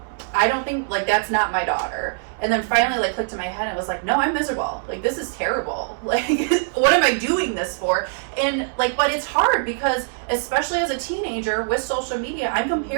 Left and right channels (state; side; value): silent; left; 64 dB below the other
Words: I don't think, like, that's not my daughter. And then finally like clicked in my head and was like, no, I'm miserable. Like, this is terrible. Like, what am I doing this for? And like, but it's hard because especially as a teenager with social media, I'm